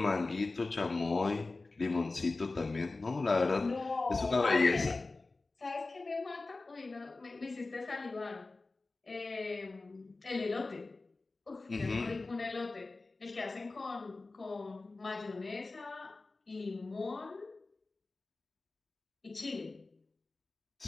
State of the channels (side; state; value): right; quieter; 3.4 dB